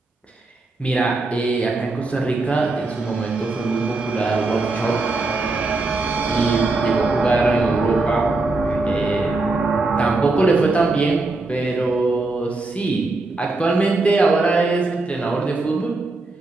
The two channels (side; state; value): left; quieter; 3.3 dB